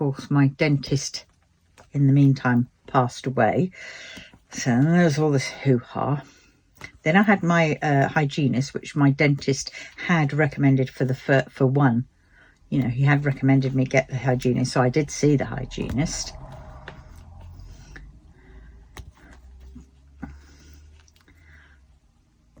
my dentist, in the meantime, passed away. So there's all this hoo-ha. Then I had my hygienist, which my dentist had recommended for one. You know, he had recommended me get the hygienist. So I did see the hygienist.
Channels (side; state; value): both; identical; correlation 1.00